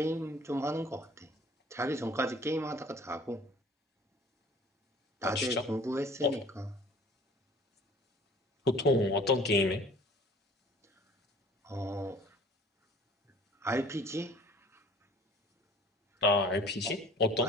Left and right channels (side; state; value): both; normal; correlation 0.50